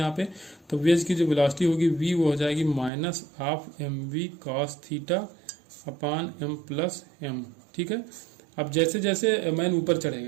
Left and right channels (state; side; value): drops out; left; at 2.9 s